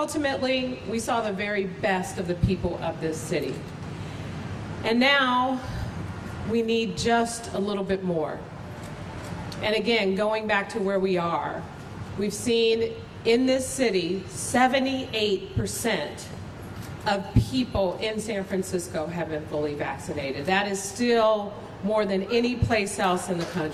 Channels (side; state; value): both; identical; correlation 1.00